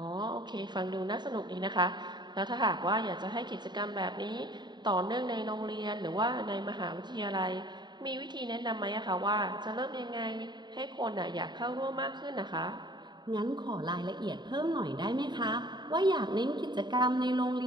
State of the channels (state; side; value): late; left; 0.21 ms